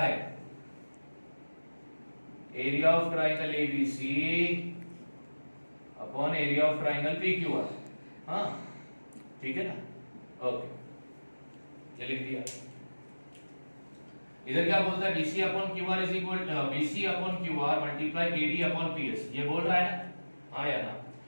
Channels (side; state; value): both; inverted; correlation -1.00